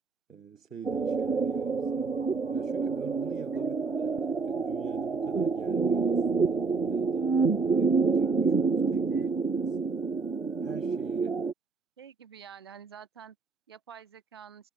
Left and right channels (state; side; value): quieter; left; 4.4 dB